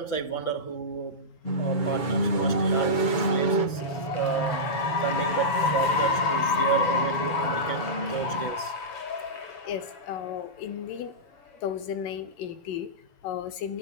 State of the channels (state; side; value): late; right; 7.1 ms